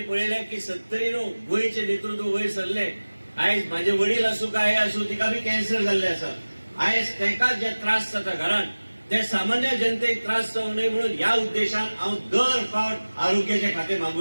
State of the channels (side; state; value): both; inverted; correlation -1.00